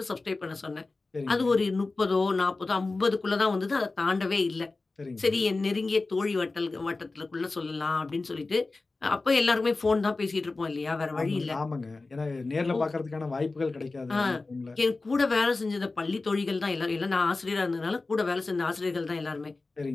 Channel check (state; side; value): quieter; right; 3.5 dB